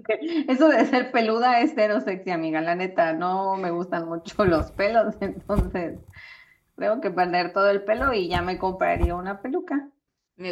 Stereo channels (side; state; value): both; identical; correlation 1.00